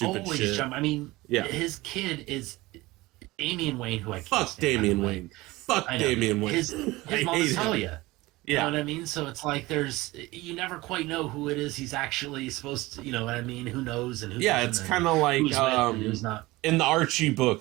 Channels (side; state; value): left; quieter; 20.1 dB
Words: shit. I mean, his kid is Damian Wayne, who I can't fuck stand, Damian Wayne. Fuck Damian Wayne. His mom is Talia. Yeah. You know what I mean? So it's like you never quite know who it is he's actually supposed to, you know what I mean? Who knows and who doesn't, it's kind of like who's not. In the Archie